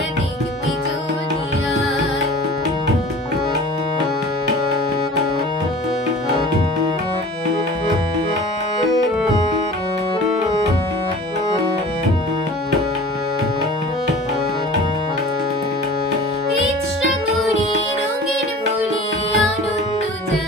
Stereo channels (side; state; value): both; normal; correlation 0.41